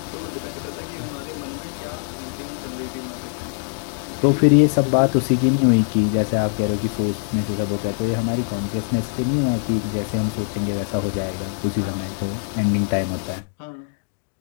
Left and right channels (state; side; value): silent; right; digital silence